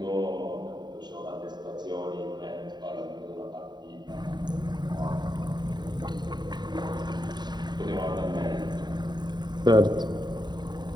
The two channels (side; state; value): left; late; 0.21 ms